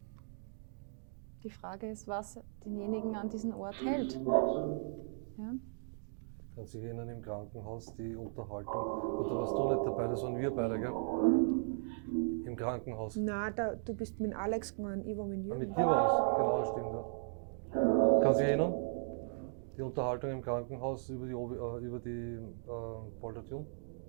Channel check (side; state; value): left; silent; digital silence